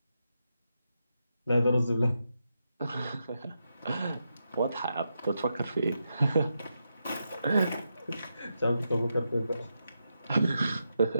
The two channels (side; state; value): both; inverted; correlation -0.85